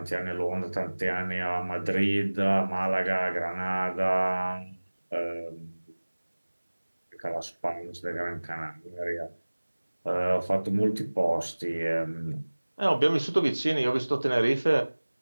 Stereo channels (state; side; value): inverted; both; correlation -1.00